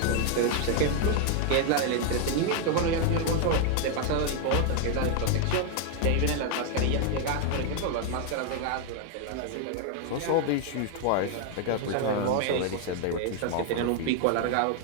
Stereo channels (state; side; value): different; both; correlation 0.00